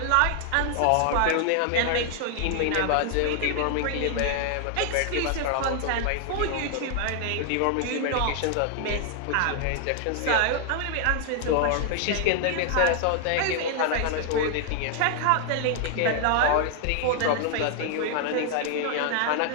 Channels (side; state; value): both; different; correlation 0.00